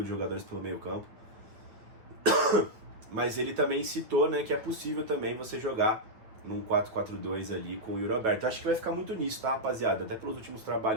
de jogadores pelo meio campo. Mas ele também citou, né, que é possível também você jogar num 4-4-2 ali com o Yuri Alberto. Eu acho que vai ficar muito nisso, tá, rapaziada? Até pelos últimos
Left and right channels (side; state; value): left; late; 9.3 ms